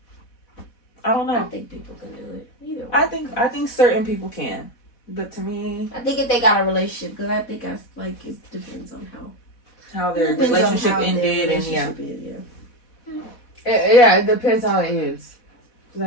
I don't I know. think people can do it. Either way. I think certain people can, but to me, I think if they got a relationship, because I think I like it depends on how their it depends on relationship how their ended, relationship is, It depends how it ends.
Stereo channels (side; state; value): right; late; 4.1 ms